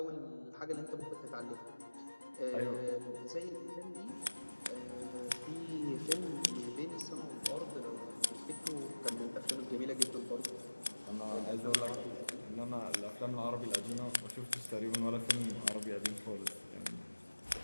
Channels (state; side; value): inverted; both; correlation -1.00